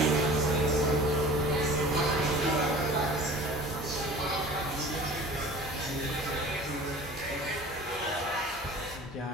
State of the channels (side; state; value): both; normal; correlation 0.43